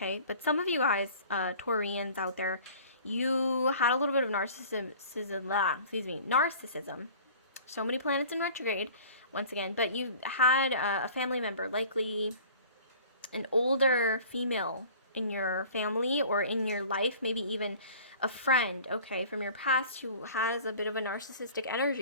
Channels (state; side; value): inverted; both; correlation -0.46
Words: But some of you guys, Taurians out there, you had a little bit of narcissism. So many planets in retrograde, once again. But you had a family member, likely an older female in your family or in your life, maybe even a friend, okay, from your past who has a bit of a narcissistic